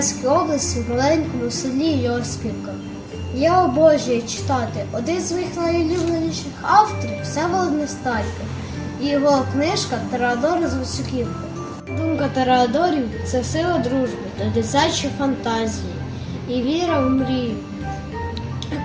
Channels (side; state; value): both; identical; correlation 1.00